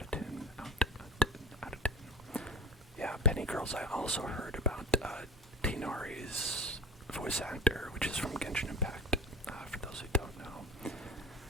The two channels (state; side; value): normal; both; correlation 0.33